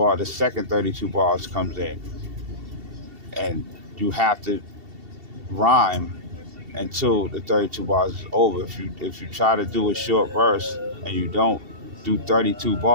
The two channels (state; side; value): late; left; 2.7 ms